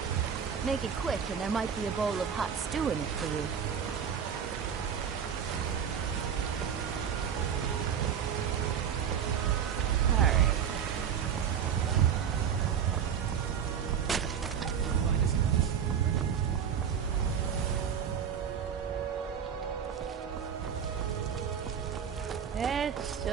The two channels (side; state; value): left; quieter; 8.0 dB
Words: Make it quick, and there might be a bowl of hot stew in it for you. It's